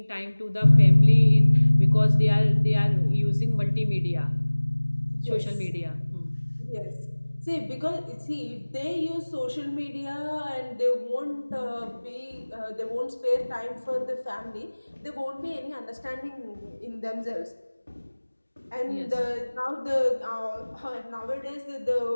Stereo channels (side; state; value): both; inverted; correlation -1.00